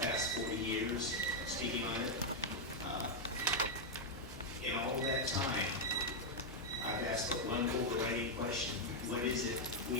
40 years speaking on it. In all that time, I've asked but one overriding question. What is it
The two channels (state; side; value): normal; both; correlation -0.01